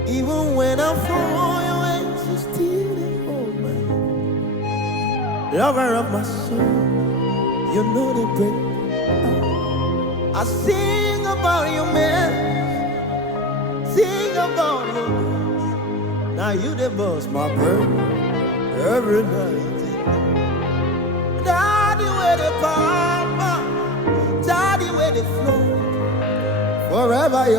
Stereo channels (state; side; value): normal; both; correlation 0.25